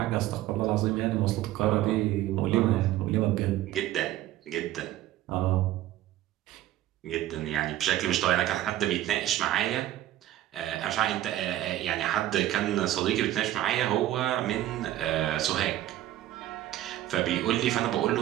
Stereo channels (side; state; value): left; quieter; 13.9 dB